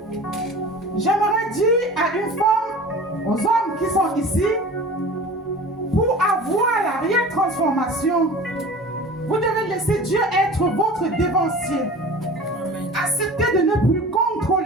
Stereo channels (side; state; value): both; normal; correlation 0.39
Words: J'aimerais dire à une femme, aux hommes qui sont ici, pour avoir la réelle transformation, vous devez laisser Dieu être votre dévancier. Acceptez de ne plus